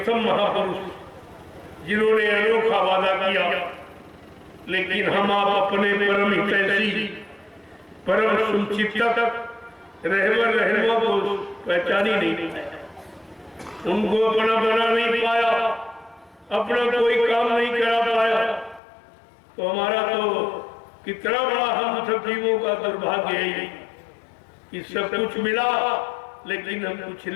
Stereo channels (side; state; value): right; drops out; at 18.8 s